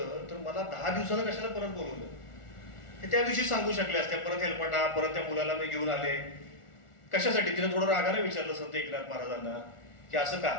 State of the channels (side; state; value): right; late; 1.4 ms